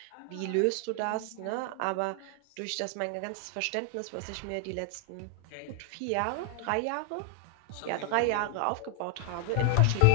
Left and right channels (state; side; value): different; both; correlation 0.00